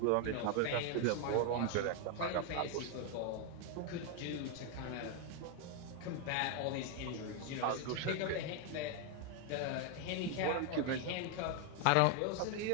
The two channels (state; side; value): different; both; correlation 0.01